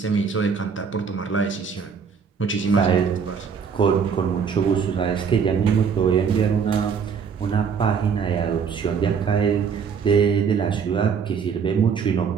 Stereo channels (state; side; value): quieter; left; 6.4 dB